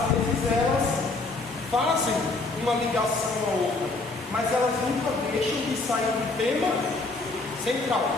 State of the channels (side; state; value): right; quieter; 3.4 dB